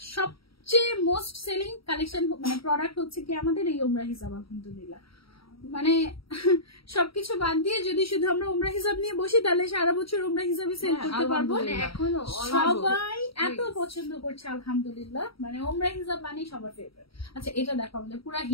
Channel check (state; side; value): late; right; 0.75 ms